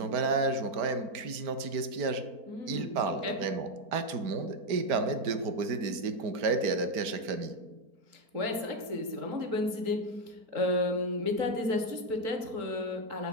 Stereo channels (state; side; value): late; left; 4.4 ms